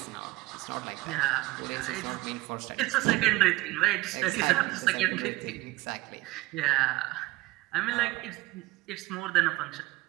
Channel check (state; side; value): quieter; left; 19.3 dB